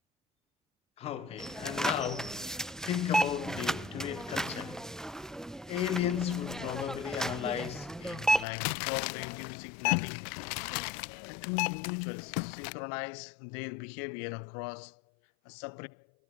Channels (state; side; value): drops out; right; at 8.5 s